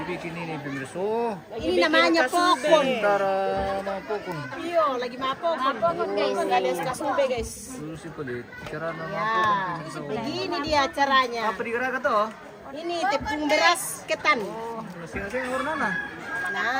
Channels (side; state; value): both; identical; correlation 1.00